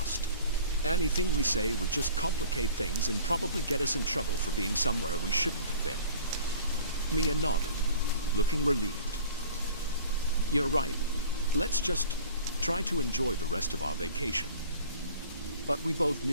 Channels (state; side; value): inverted; both; correlation -0.45